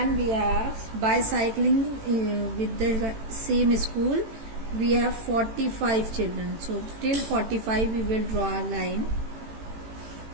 we have bicycling with the same school. We have 45 children. So till 45 we will draw a line.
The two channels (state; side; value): late; left; 18 ms